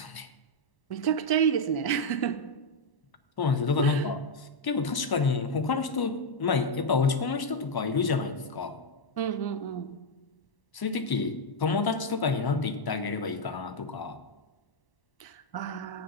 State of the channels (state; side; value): late; right; 1.0 ms